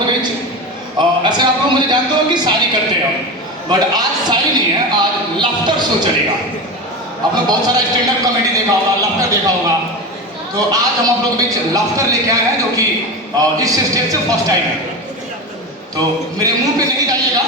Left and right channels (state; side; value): normal; both; correlation 0.23